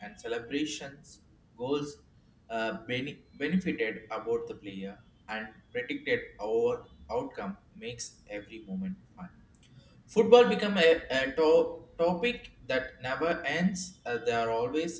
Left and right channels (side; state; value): both; identical; correlation 1.00